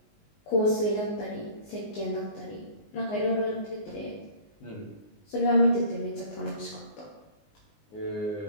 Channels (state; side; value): late; right; 19 ms